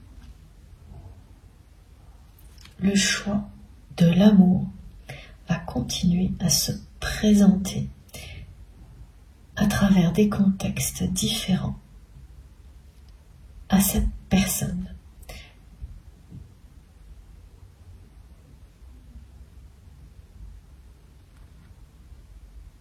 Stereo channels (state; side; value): identical; both; correlation 1.00